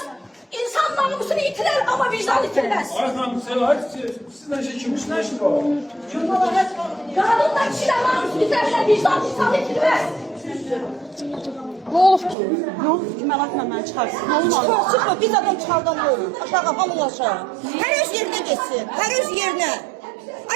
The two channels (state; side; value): drops out; left; at 12.4 s